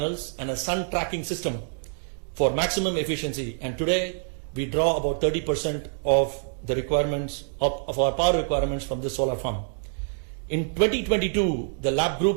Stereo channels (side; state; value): left; silent; digital silence